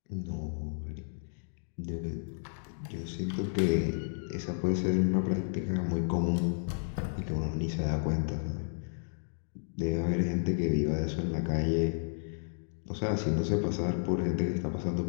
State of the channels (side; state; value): right; silent; digital silence